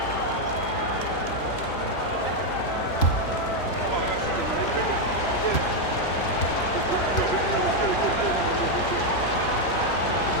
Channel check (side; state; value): right; late; 3.0 ms